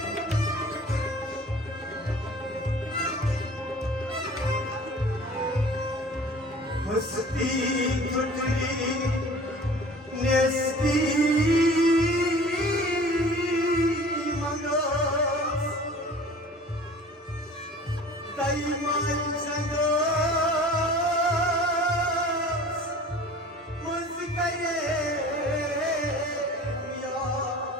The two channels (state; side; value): normal; both; correlation 0.45